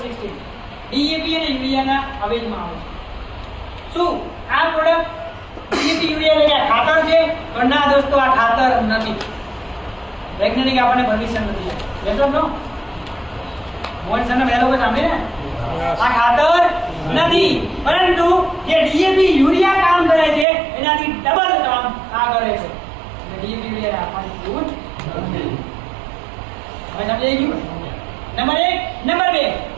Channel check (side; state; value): left; drops out; at 20.5 s